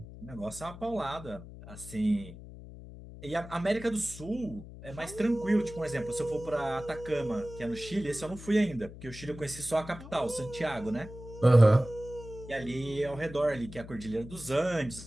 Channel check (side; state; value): left; noise; hum, 14 dB below the sound